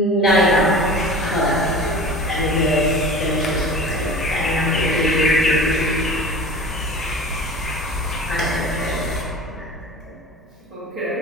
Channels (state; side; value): normal; both; correlation 0.37